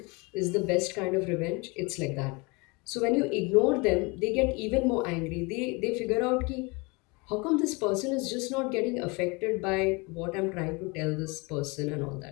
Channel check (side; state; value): right; quieter; 27.9 dB